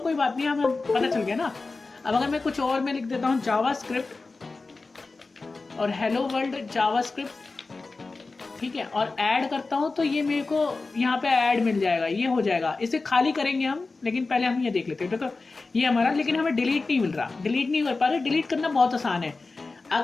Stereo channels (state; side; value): quieter; right; 3.7 dB